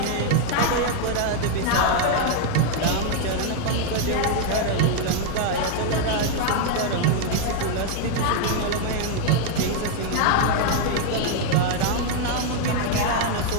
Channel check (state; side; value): different; both; correlation 0.00